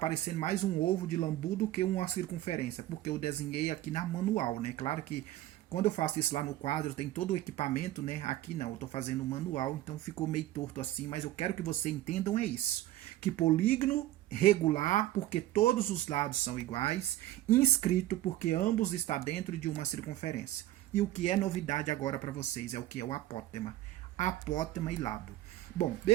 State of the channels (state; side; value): quieter; left; 14.6 dB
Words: mais um ovo de lambu do que uma circunferência, porque eu desenhei aqui na manual, né? Claro que quando eu faço isso lá no quadro, tem todo o equipamento, né? Aqui não, eu estou fazendo manual, então ficou meio torto assim, mas eu quero que vocês entendam é isso. Que polígono regular, porque todos os lados são iguais, inscrito, porque ambos estão dentro de uma circunferência. E o que é novidade agora para vocês é o que é o apótema. Apótema e lado. Bom,